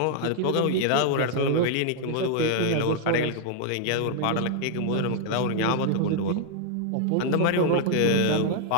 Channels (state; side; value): different; both; correlation 0.00